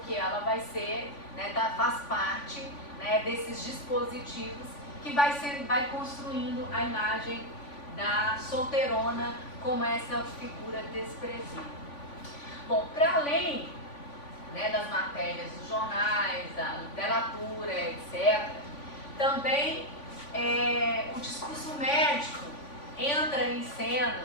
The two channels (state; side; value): late; right; 3.5 ms